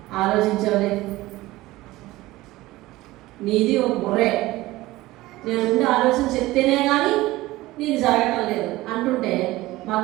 ఆలోచించవలే, నీది ఒక బుర్రే, నేను ముందు ఆలోచన చెప్తేనే కానీ నీది జరగటం లేదు అంటుంటే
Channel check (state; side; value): quieter; left; 18.2 dB